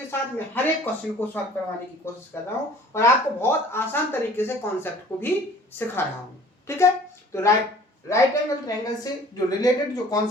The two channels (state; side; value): normal; both; correlation 0.50